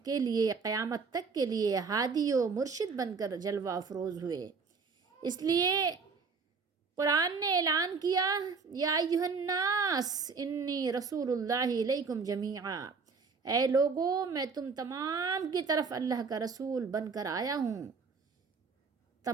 کے لیے قیامت تک کے لیے ہادی و مرشد بن کر جلوہ افروز ہوئے. اس لیے قرآن نے اعلان کیا، یا ایھا الناس انی رسول اللہ الیکم جمیعا، اے لوگو میں تم تمام کی طرف اللہ کا رسول بن کر آیا ہوں.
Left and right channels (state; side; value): quieter; left; 5.0 dB